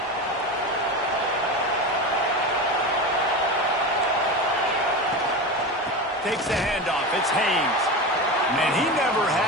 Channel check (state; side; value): normal; both; correlation 0.24